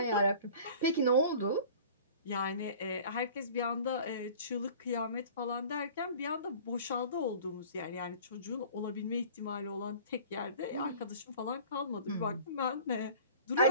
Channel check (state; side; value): inverted; both; correlation -0.44